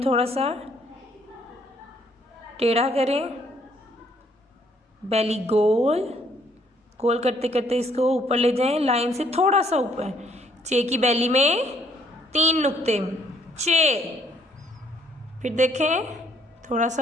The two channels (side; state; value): both; normal; correlation 0.66